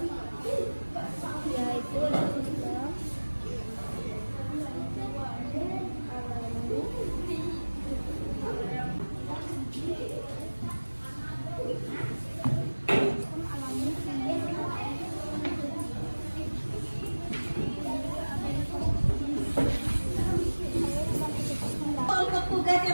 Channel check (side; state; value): both; inverted; correlation -1.00